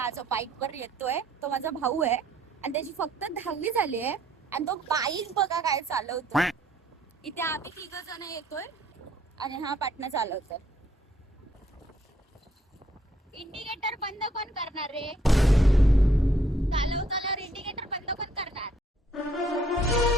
जो बाईक वर येतोय तो माझा भाऊ आहे आणि त्याची फक्त 10वी झाली आहे आणि तो बाईक बघा काय चालवतोय. इथे आम्ही 3 जण येतोय आणि हा पाटणा चालवतोय. इंडिकेटर बंद कोण करणार रे. चालवताना इंडिकेटर बंद कोण करणार.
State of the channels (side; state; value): both; normal; correlation 0.66